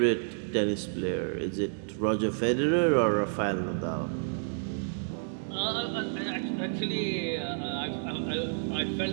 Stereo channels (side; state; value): left; silent; digital silence